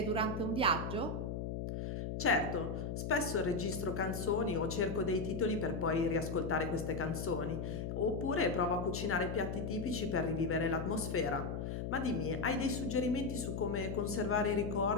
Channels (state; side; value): noise; left; hum, 3 dB below the sound